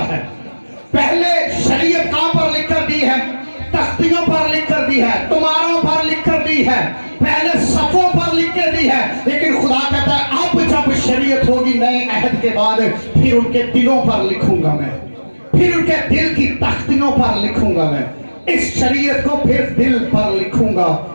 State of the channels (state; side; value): inverted; both; correlation -1.00